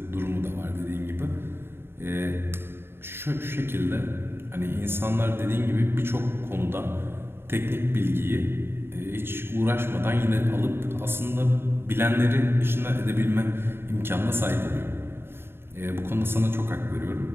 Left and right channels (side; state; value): left; late; 0.11 ms